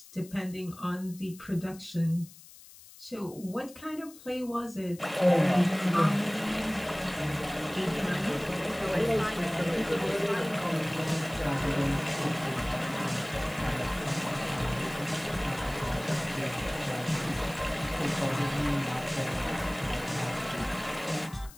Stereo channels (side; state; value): left; noise; hiss, 20 dB below the sound